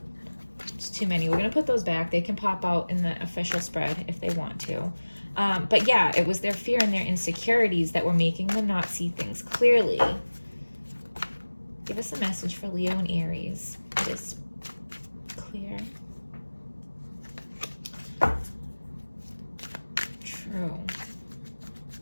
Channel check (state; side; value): inverted; both; correlation -1.00